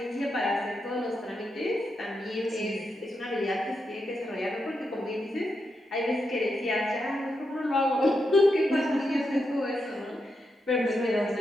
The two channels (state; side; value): normal; both; correlation 0.85